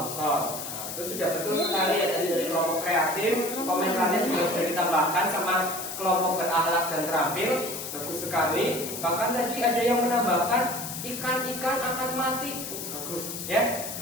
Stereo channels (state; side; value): noise; left; hiss, 7 dB below the sound